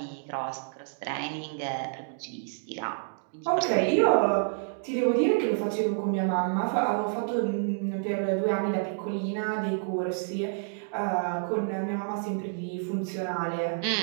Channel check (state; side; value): silent; left; digital silence